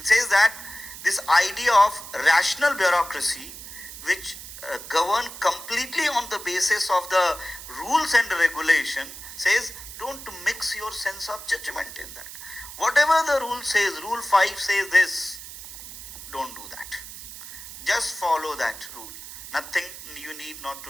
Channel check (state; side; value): noise; right; hiss, 12 dB below the sound